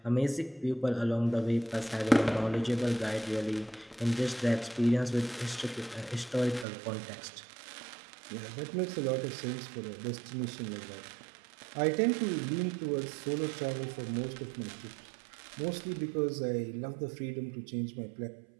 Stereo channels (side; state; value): left; drops out; at 6.7 s